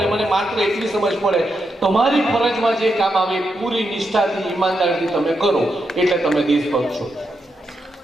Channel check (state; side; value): normal; both; correlation 0.84